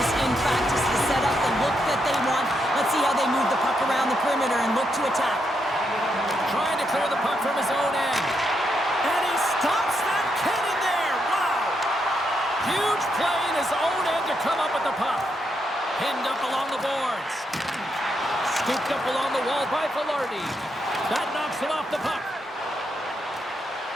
in practice to set up the look that they want. Let's see how they move the puck around the perimeter and look to attack. Trying to clear the puck from his own end. And he stops that cannon there. Wow. Huge play in his own end to come up with the puck. Pinned up along the boards. Scooped up along the wall by Velarde. That knocks him off the puck.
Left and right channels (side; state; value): both; normal; correlation 0.80